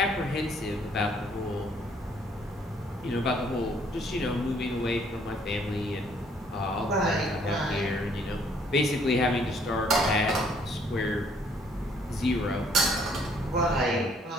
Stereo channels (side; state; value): both; normal; correlation 0.64